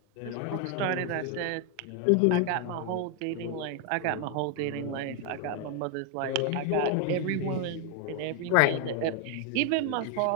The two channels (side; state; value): both; different; correlation 0.01